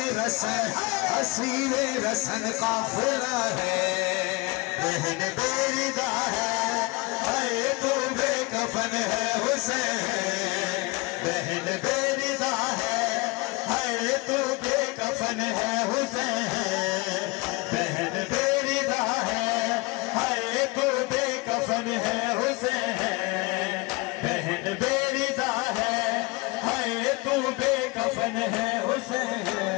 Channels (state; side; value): quieter; right; 25.0 dB